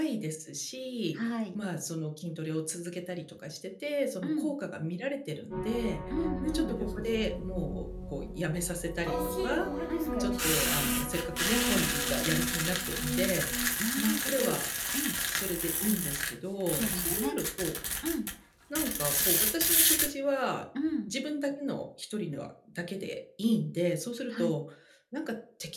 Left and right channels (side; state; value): both; identical; correlation 1.00